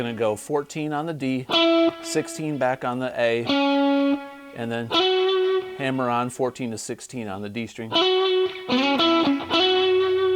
to go 14 on the D, 16 back on the A, and then hammer on 14 to 16 on the D string.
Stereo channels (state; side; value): identical; both; correlation 1.00